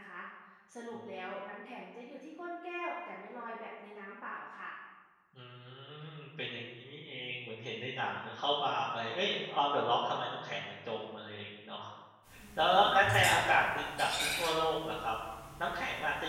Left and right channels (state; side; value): identical; both; correlation 1.00